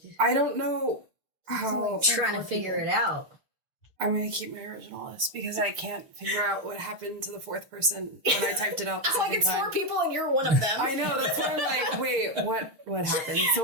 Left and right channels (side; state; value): left; late; 6.5 ms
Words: I don't know how Trying to figure it out. I'm going to keep my original list because I can't figure out what happened to the 4th person when I typed it out the Like second it's time. 4 people and you're one of them. I know, that's why I'm like, wait, what happened? So